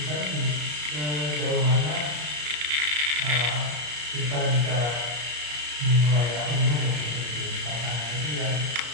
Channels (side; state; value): left; late; 34 ms